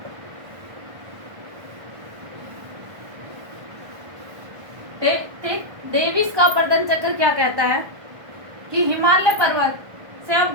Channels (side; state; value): left; late; 1.3 ms